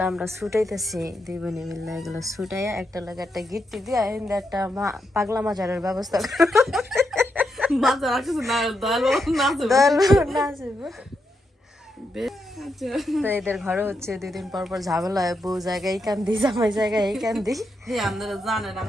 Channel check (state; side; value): normal; both; correlation 0.83